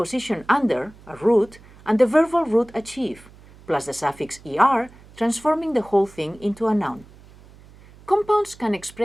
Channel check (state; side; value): noise; right; hum, 23 dB below the sound